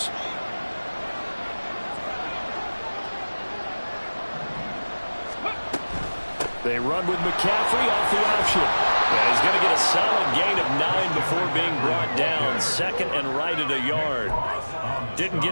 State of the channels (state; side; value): inverted; both; correlation -1.00